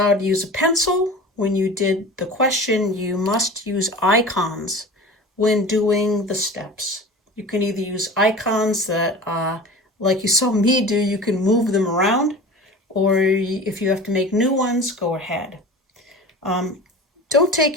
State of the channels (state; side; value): normal; both; correlation 0.36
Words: to use a pencil when you did the question, you must use icons when doing the steps. You can either use icons that, like you saw me do, you can move them around, or if you have to make new ones, go ahead. Don't